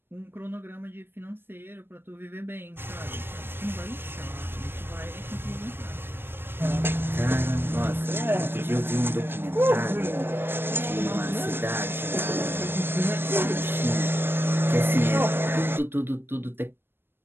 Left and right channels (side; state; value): left; late; 0.10 ms